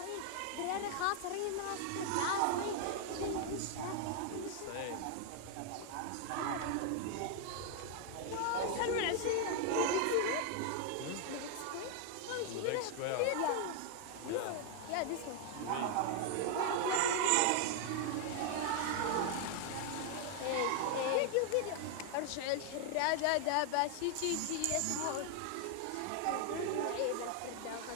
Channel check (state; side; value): different; both; correlation 0.00